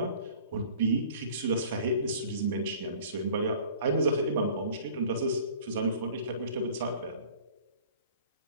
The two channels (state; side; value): inverted; both; correlation -0.48